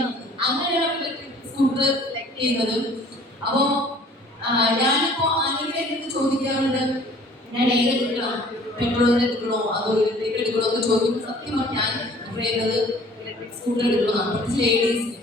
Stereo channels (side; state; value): both; normal; correlation 0.52